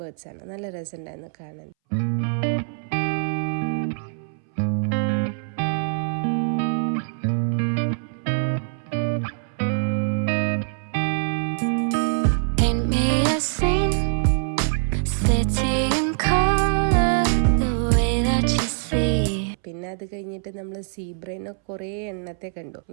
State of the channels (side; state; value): left; silent; 63 dB below the other